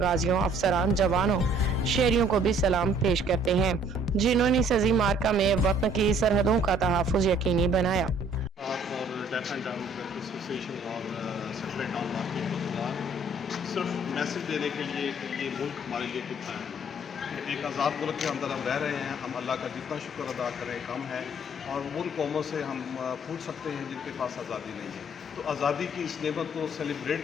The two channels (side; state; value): both; normal; correlation 0.59